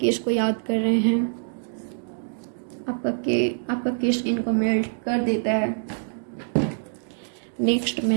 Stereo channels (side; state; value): left; silent; digital silence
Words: को याद कर रहे हैं, आपका केस इनको मेल्ट कर देता है। Next